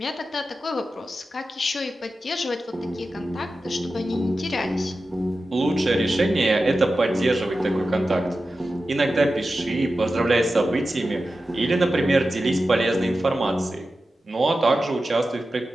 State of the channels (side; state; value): both; normal; correlation 0.93